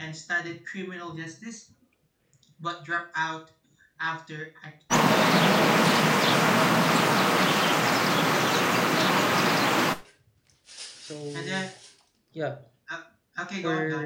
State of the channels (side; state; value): both; identical; correlation 1.00